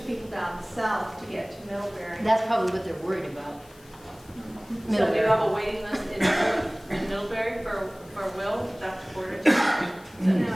people down south, to get to Middlebury. That's probably what they're worried about. So do you have a waiting list in Middlebury for Will, Dr. Porter?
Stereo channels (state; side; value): noise; left; hiss, 26 dB below the sound